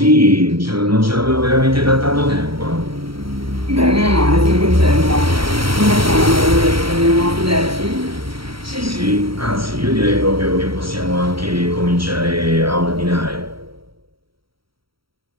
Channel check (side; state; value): left; late; 0.75 ms